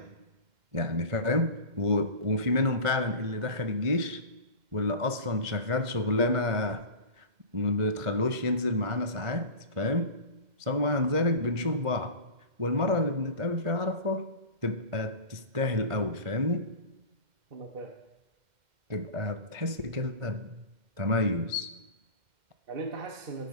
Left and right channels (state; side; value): late; left; 2.1 ms